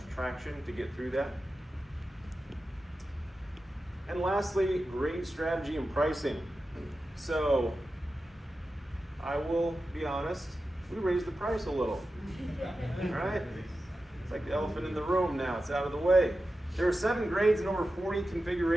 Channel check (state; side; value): normal; both; correlation 0.92